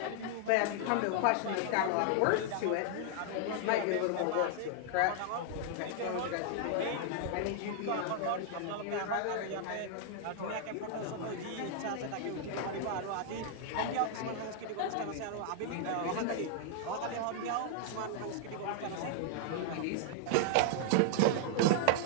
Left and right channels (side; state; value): both; different; correlation 0.00